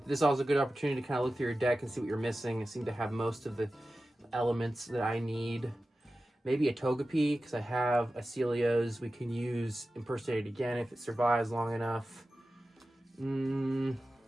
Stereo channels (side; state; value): both; normal; correlation 0.94